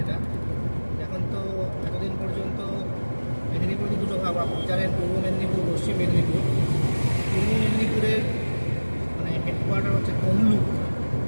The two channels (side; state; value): both; inverted; correlation -1.00